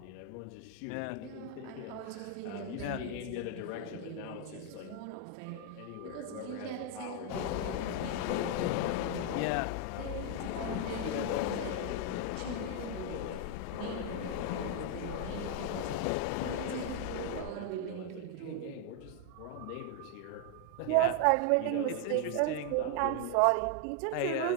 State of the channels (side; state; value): both; different; correlation 0.00